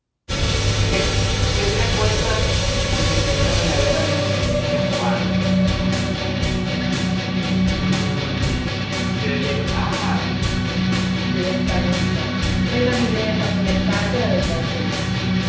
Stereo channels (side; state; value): both; identical; correlation 1.00